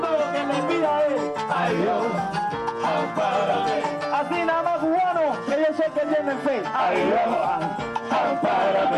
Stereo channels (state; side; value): identical; both; correlation 1.00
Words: lo que me pida es ay Dios, ampárame. Así nada más cubano, que yo sé que tienen fe. Ay Dios,